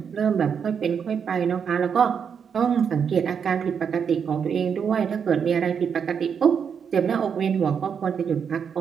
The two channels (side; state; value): left; quieter; 7.0 dB